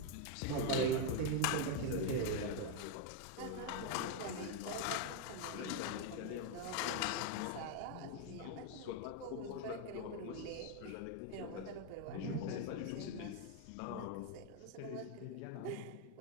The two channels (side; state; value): both; different; correlation 0.01